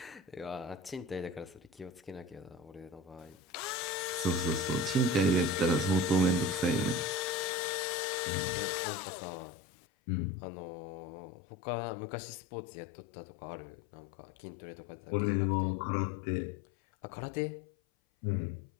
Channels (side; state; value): right; drops out; at 7.5 s